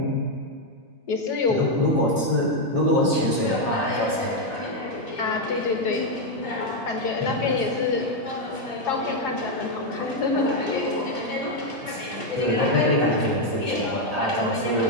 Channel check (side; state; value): both; normal; correlation 0.02